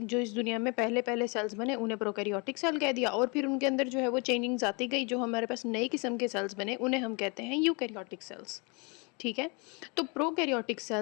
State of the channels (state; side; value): quieter; right; 31.2 dB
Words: इस दुनिया में पहले पहले सेल्स बने उन्हें प्रोकैरियोटिक सेल कह दिया, और फिर उनके अंदर जो है वो चेंजिंग्स आती गई, जो हमारे पास नई किस्म के सेल्स बने उन्हें हम कहते हैं यूकैरियोटिक सेल्स। ठीक है। तो प्रोकैरियोटिक